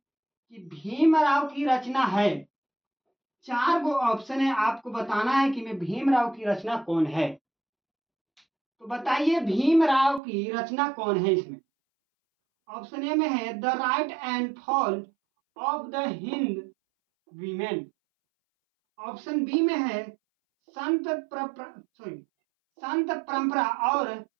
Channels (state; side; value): drops out; left; at 10.2 s